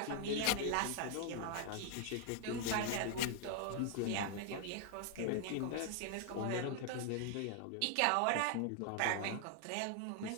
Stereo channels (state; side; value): different; both; correlation 0.00